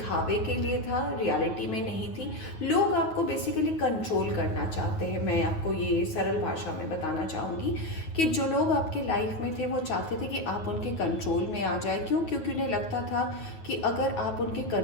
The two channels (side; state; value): right; late; 9.3 ms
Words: के लिए था, रियलिटी में नहीं थी। लोग आपको बेसिकली कंट्रोल करना चाहते हैं। मैं आपको ये सरल भाषा में बताना चाहूँगी कि जो लोग आपके लाइफ में थे वो चाहते थे कि आप उनके कंट्रोल में आ जाए। क्यों? क्योंकि उन्हें लगता था कि अगर आप उनके